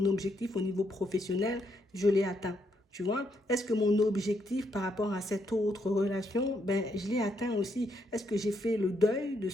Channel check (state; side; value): normal; both; correlation 0.76